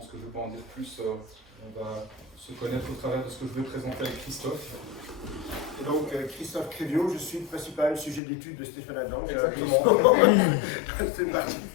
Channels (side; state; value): right; drops out; at 8.2 s